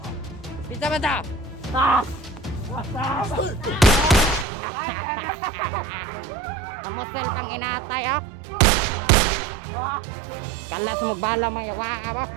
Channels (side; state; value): left; drops out; at 4.5 s